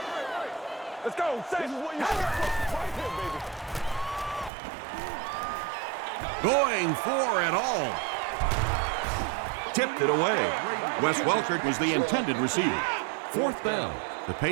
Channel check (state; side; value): drops out; left; at 4.5 s